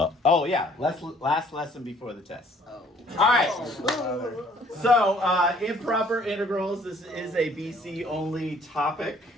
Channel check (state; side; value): normal; both; correlation 0.59